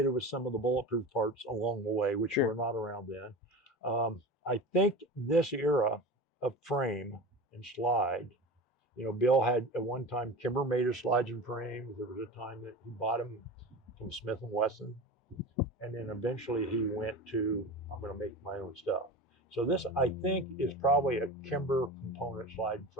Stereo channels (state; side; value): normal; both; correlation 0.30